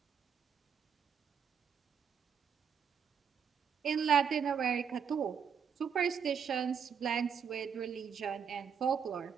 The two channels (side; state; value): left; quieter; 7.2 dB